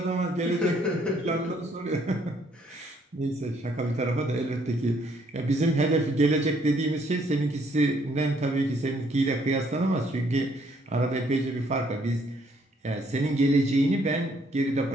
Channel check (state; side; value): normal; both; correlation 0.67